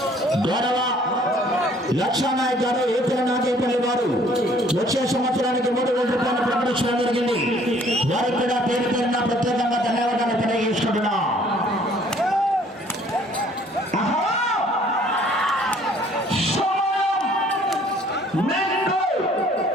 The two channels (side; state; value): both; normal; correlation 0.58